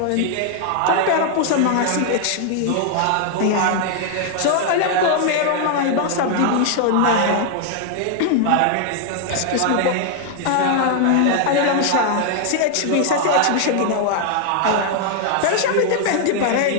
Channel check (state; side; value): different; both; correlation 0.00